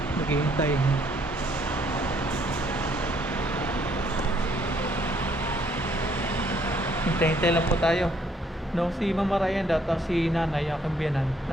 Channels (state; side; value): normal; both; correlation 0.67